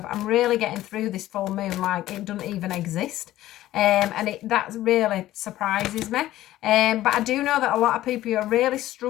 I'm really getting through this full moon like it doesn't even exist. And that really surprises me. But I do know that a lot of people are really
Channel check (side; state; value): right; quieter; 14.7 dB